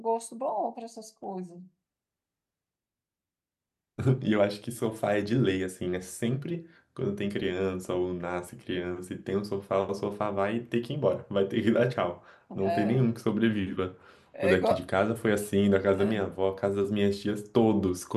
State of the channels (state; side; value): identical; both; correlation 1.00